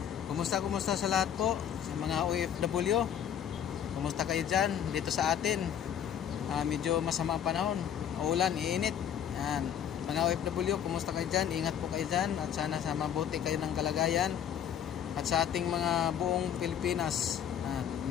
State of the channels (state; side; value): quieter; right; 9.1 dB